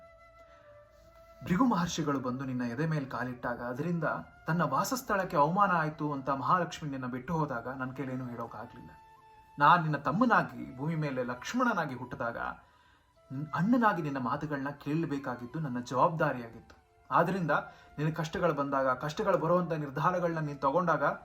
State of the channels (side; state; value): both; identical; correlation 1.00